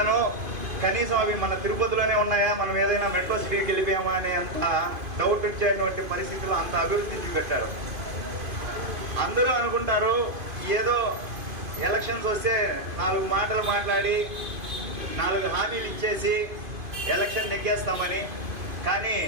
కనీసం అవి మన తిరుపతిలోనే ఉన్నాయా, మనం ఏదైనా మెట్రో సిటీకి వెళ్ళిపోయామా అనే అంత డౌట్ వచ్చేటువంటి పరిస్థితుల్లో అంత అభివృద్ధి చూపెట్టారు. అందరూ అనుకుంటారు ఏదో ఎలక్షన్స్ వస్తే 4 మాటలు మాట్లాడి 4 హామీలు ఇచ్చేసి ఎలక్షన్ నెగ్గేస్తామని. కానీ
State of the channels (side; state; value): left; late; 2.5 ms